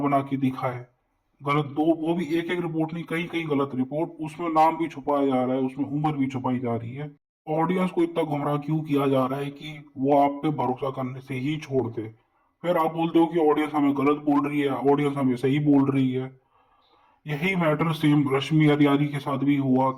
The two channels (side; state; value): both; identical; correlation 1.00